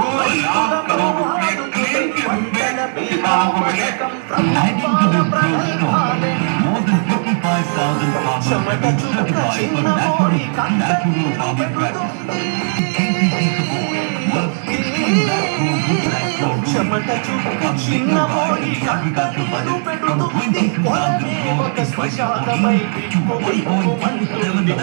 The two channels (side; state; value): left; silent; digital silence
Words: రైతులను ఆదుకునే పంటల బీమా పథకం ప్రభుత్వాల ప్రగల్భాలే. చెమట చుక్క చిన్నబోయి కంట నీరు పెడుతుంది, చెమట చుక్క చిన్నబోయి కంట నీరు పెడుతుంది. పొలమే ఒక శ్మశానమై బిక్కు బిక్కుమంటుంది.